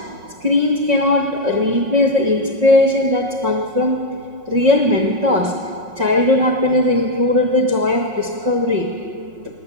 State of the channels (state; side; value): late; left; 5.5 ms